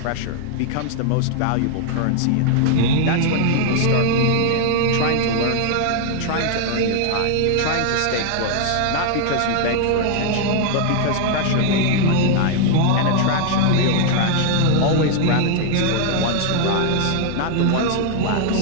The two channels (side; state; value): both; different; correlation 0.00